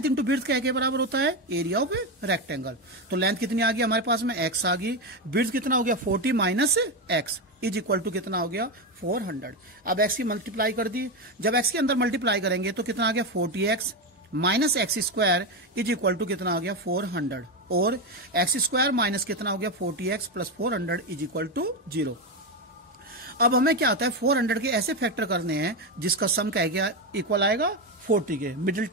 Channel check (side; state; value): both; normal; correlation 0.12